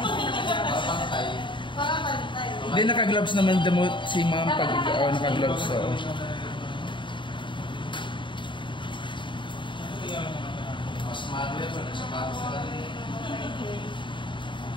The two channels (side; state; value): right; late; 0.23 ms